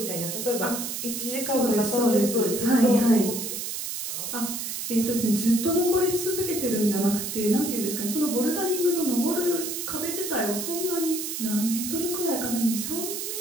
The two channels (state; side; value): noise; right; hiss, 4 dB below the sound